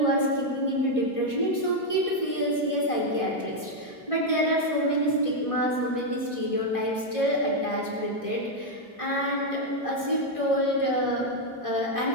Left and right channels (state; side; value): late; right; 1.5 ms